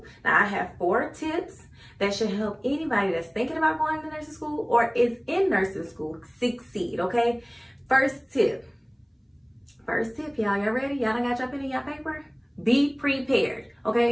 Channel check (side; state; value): both; identical; correlation 1.00